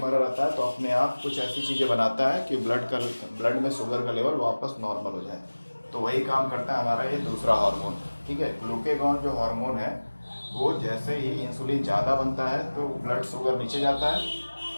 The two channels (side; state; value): both; inverted; correlation -1.00